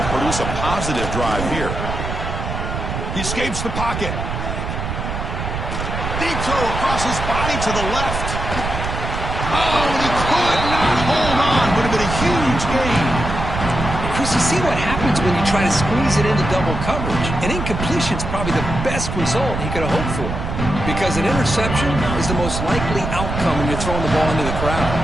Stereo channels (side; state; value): right; noise; rumble, 4 dB below the sound